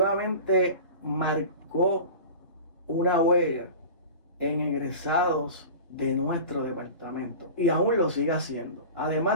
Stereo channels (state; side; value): inverted; both; correlation -0.35